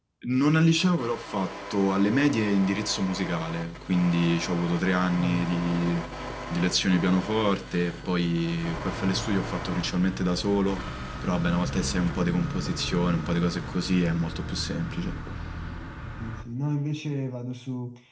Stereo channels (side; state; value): both; identical; correlation 1.00